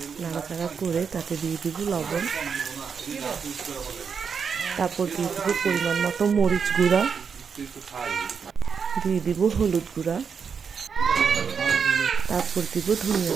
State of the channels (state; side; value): quieter; left; 6.3 dB